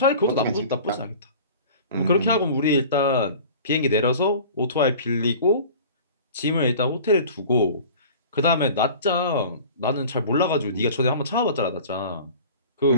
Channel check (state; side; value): inverted; both; correlation -0.42